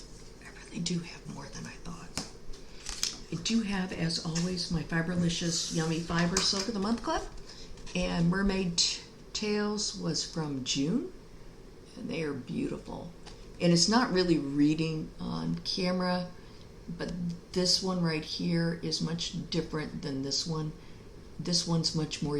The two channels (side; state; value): both; identical; correlation 1.00